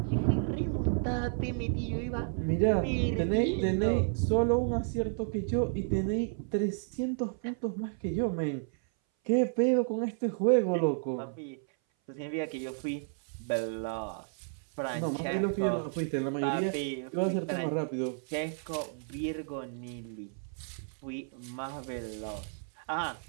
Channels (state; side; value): silent; left; 57 dB below the other